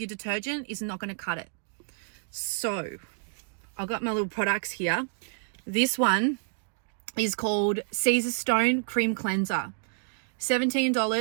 detergent is not going to cut it. So I've got my little products here. This one is called Caesarstone Cream Cleanser.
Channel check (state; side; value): silent; left; digital silence